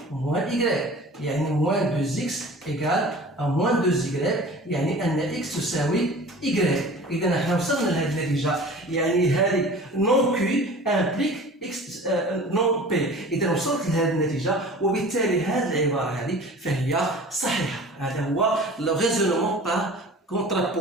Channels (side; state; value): both; normal; correlation 0.41